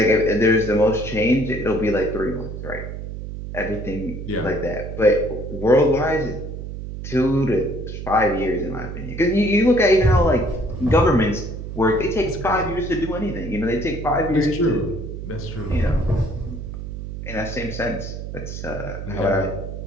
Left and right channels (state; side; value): noise; right; hum, 8 dB below the sound